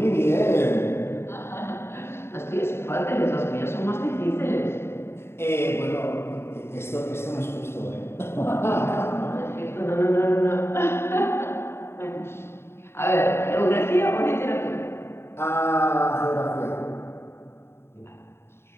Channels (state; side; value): late; right; 0.12 ms